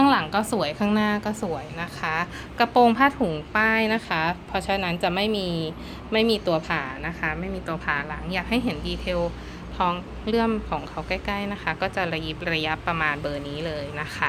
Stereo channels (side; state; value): both; identical; correlation 1.00